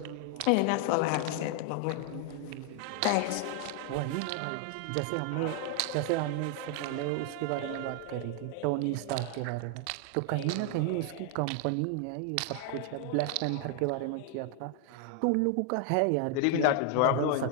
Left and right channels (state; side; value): different; both; correlation 0.00